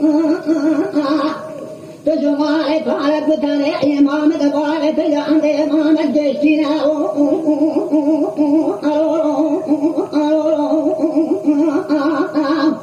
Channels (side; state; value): both; identical; correlation 1.00